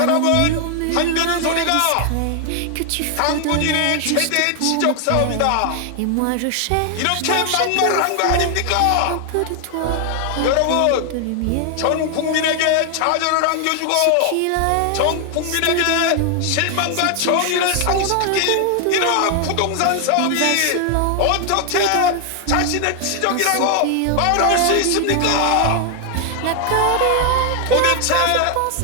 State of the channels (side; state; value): both; different; correlation 0.00